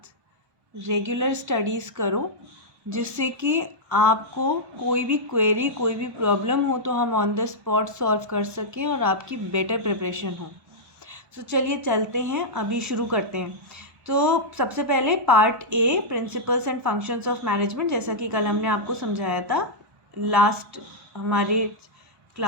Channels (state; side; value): late; left; 1.1 ms